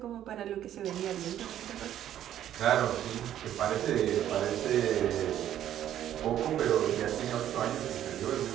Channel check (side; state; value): left; quieter; 11.3 dB